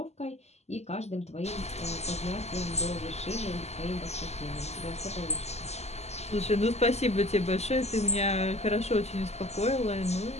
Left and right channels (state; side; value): late; right; 0.32 ms